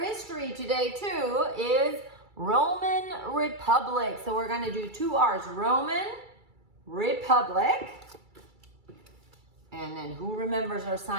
today too, is Roman Republic. So we're going to do two R's, Roman Republic. And then who remembers our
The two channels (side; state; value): left; late; 2.3 ms